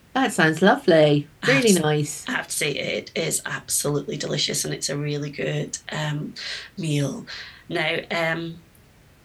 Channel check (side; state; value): both; identical; correlation 1.00